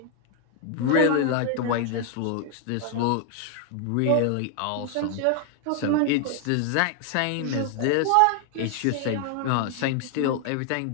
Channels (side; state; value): both; different; correlation 0.00